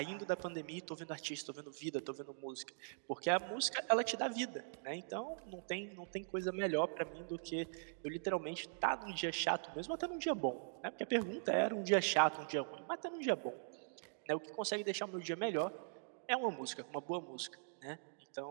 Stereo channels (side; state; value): left; silent; digital silence